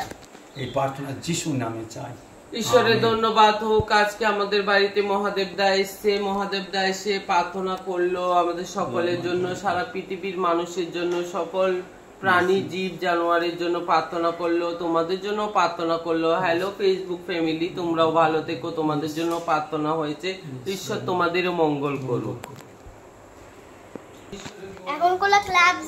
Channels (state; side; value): identical; both; correlation 1.00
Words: এই প্রার্থনা যিশুর নামে চাই। ঈশ্বরের ধন্যবাদ হোক। আজকে আমাদের বাড়িতে মহাদেব দা এসছে, মহাদেব দা এসে প্রার্থনা করলো আমাদের সকলের জন্য, সারা পৃথিবীর মানুষের জন্য, সকল প্রাণী জীব জানোয়ারের জন্য প্রার্থনা করলো, তোমাদের জন্য প্রার্থনা করলো। হ্যালো ফেসবুক ফ্যামিলি, তোমরাও ভালো থেকো, তোমাদের জন্য প্রার্থনা হয়েছে। ঈশ্বর তোমাদেরও মঙ্গল করুক। এখন কোনো ক্লাবস